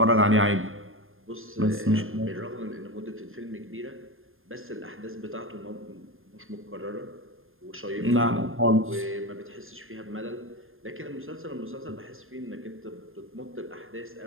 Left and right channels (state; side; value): late; left; 0.60 ms